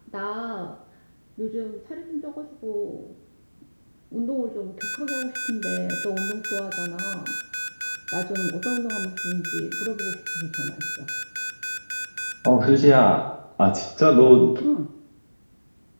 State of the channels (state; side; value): inverted; both; correlation -1.00